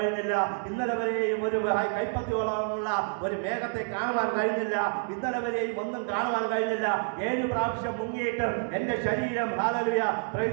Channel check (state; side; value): silent; left; 58 dB below the other